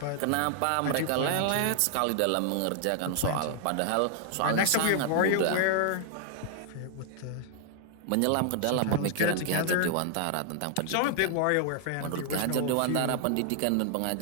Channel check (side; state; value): both; different; correlation 0.00